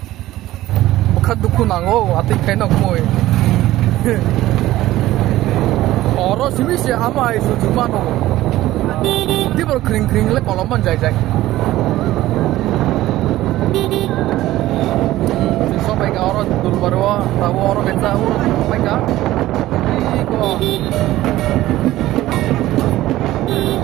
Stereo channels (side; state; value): left; quieter; 15.6 dB